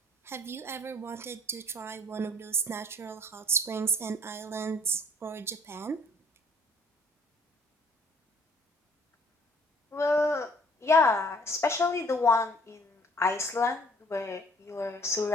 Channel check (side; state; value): both; normal; correlation 0.58